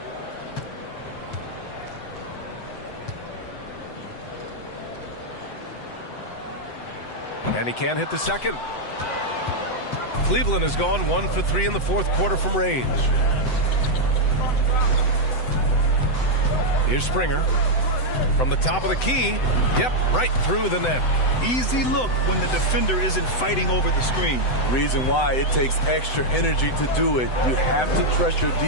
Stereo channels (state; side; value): late; right; 7.9 ms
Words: And he can't hit the second. Cleveland has gone 1 for 3 in the fourth quarter from range. Here's Springer from the top of the key. Yep, right through the net. Easy look when the defender isn't fighting over the screen. Reason why it takes extra energy to do it. You have to trust your